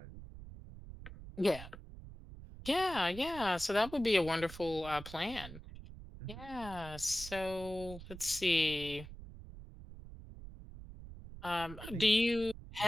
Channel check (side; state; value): right; noise; rumble, 14 dB below the sound